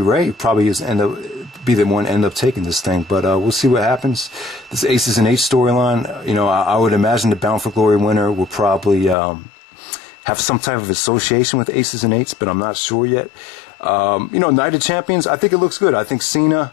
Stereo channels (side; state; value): right; drops out; at 9.2 s